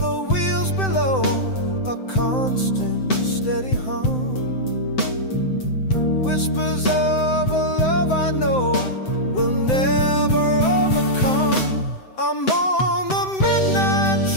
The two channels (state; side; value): late; right; 7.8 ms